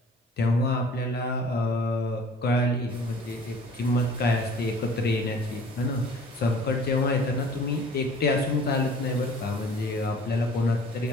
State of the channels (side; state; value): both; normal; correlation 0.49